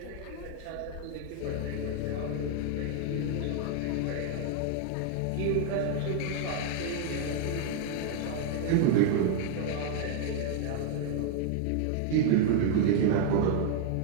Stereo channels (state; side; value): different; both; correlation 0.00